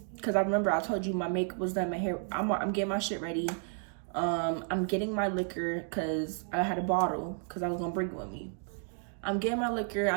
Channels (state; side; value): silent; left; 56 dB below the other